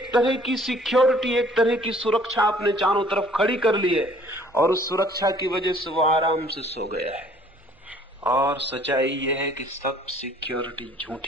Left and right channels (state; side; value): normal; both; correlation 0.56